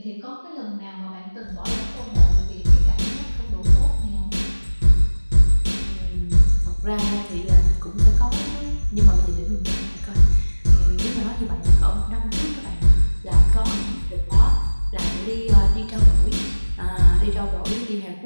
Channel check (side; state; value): both; inverted; correlation -1.00